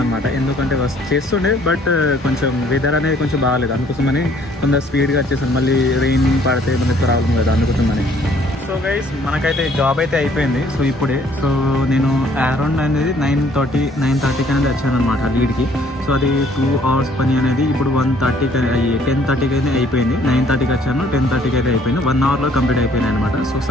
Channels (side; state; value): both; normal; correlation 0.61